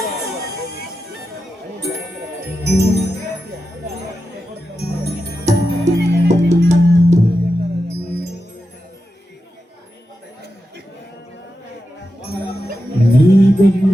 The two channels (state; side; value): normal; both; correlation 0.89